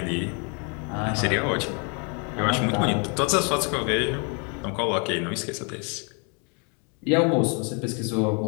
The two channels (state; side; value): quieter; right; 35.8 dB